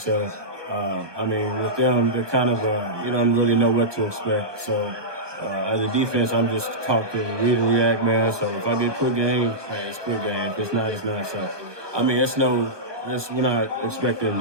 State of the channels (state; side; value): late; left; 1.2 ms